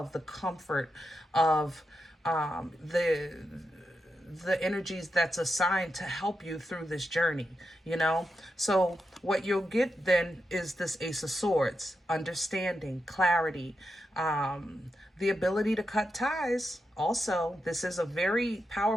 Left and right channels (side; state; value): both; normal; correlation 0.87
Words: the comfort of the energies that's assigned to help you through this journey, you know? So what you'll get then is this Ace of Swords, understanding, clarity, the ability to cut ties. Also, this is a very